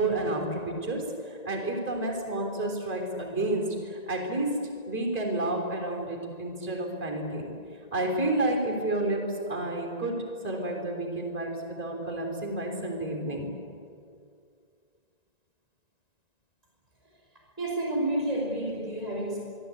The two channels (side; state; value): right; late; 1.9 ms